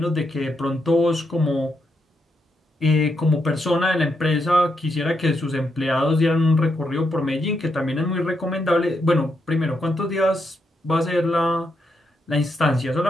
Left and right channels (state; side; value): normal; both; correlation 0.80